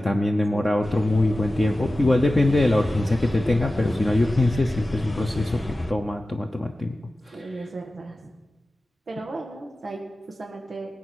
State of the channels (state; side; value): normal; both; correlation 0.95